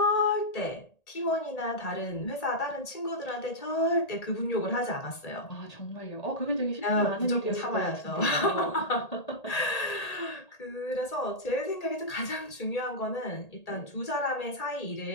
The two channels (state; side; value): late; right; 1.8 ms